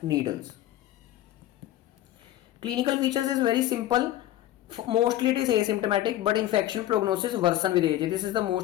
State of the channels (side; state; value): right; quieter; 13.9 dB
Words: needles. Clinical features is very simple. Mostly it is asymptomatic, but infection prognosis worsen with age. This is the